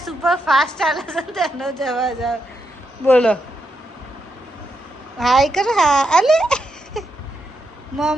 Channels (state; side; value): normal; both; correlation 0.83